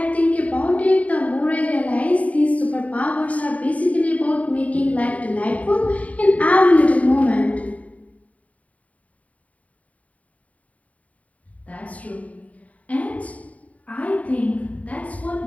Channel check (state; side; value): late; right; 0.069 ms